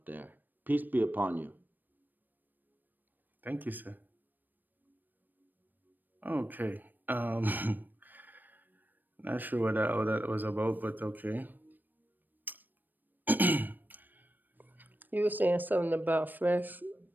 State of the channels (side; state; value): left; late; 0.091 ms